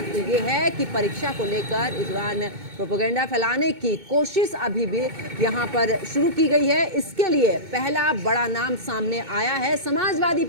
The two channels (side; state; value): left; late; 2.2 ms